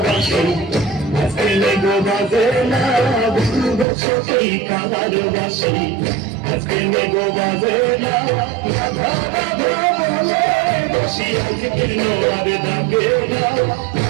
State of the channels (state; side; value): drops out; left; at 3.9 s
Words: বাসে আজকে নেগো বাজে না, বলবো সখী কানার বাসে আজকে নেগো বাজে না। রাধা রাধা বলে বসি আজকে নোয়ার ডাকে না,